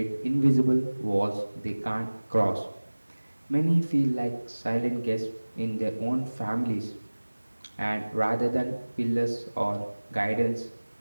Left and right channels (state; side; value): inverted; both; correlation -1.00